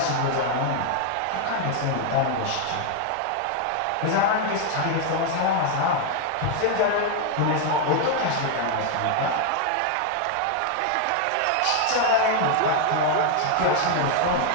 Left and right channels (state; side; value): different; both; correlation 0.00